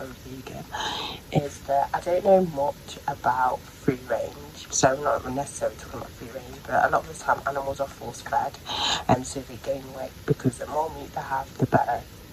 vegan, is that I don't know much about free range. So I'm not necessarily talking about free range, but a lot of the time animals are force fed, and so they gain weight because the more meat they have, the better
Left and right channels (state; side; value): identical; both; correlation 1.00